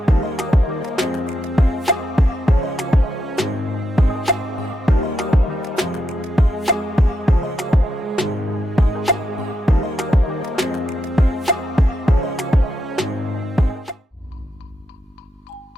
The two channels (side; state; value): both; normal; correlation 0.83